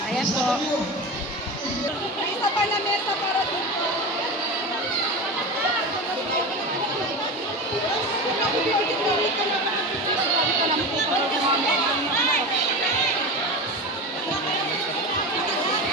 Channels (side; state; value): both; normal; correlation 0.25